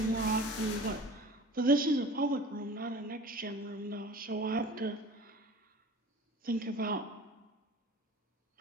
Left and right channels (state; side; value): normal; both; correlation 0.41